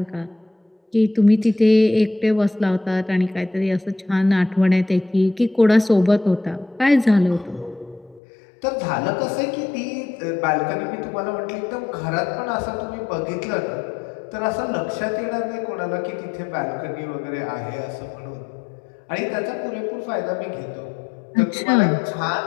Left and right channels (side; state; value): right; drops out; at 8.2 s